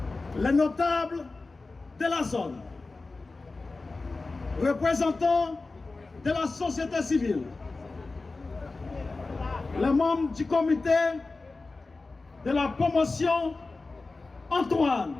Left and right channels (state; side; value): quieter; right; 3.6 dB